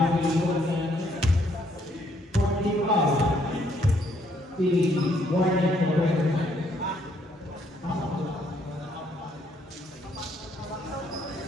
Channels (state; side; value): normal; both; correlation 0.69